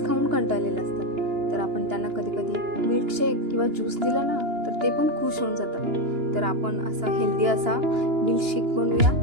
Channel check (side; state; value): left; late; 2.9 ms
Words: खाऊन कंटाळलेले असतात. तर आपण त्यांना कधी कधी मिल्कशेक किंवा ज्यूस दिला ना तर ते पण खुश होऊन जातात. तर आपण असा हेल्दी असा मिल्कशेक बनवूया.